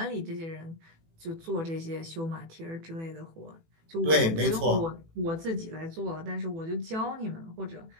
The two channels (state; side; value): late; left; 18 ms